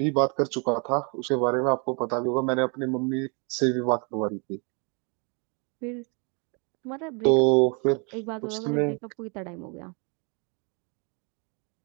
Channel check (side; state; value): left; quieter; 34.7 dB